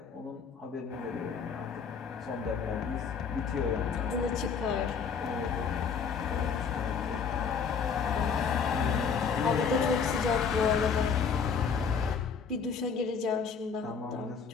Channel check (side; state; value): right; quieter; 6.1 dB